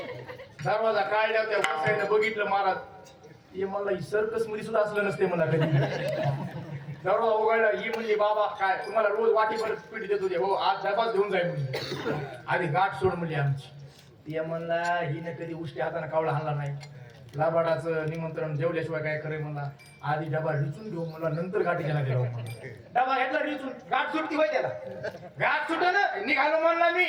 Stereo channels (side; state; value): both; identical; correlation 1.00